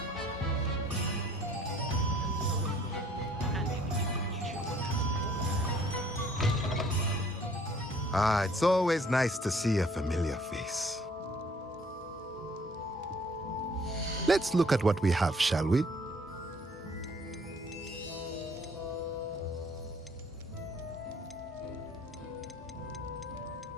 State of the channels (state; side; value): normal; both; correlation 0.59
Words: Ah, it's always nice to see a familiar face. Let's look at what we have, shall we?